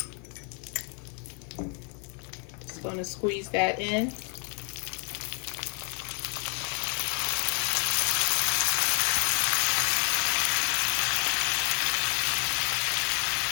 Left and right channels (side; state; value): right; quieter; 39.2 dB